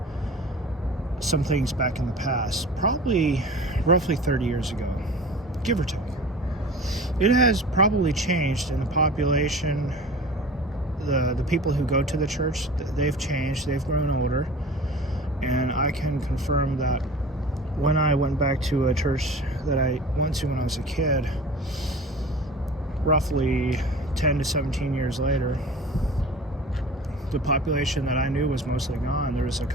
some things back in the past, probably roughly 30 years ago, give or take. It has probably changed in the population. The people who go to the church, they've changed, they've grown older, and I can confirm that when I went back to a church that I went to when I was a kid, roughly 10 to 17 years later, the population that I knew was mostly gone. There was a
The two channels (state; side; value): normal; both; correlation 0.39